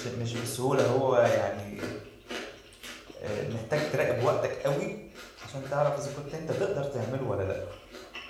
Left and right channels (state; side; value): identical; both; correlation 1.00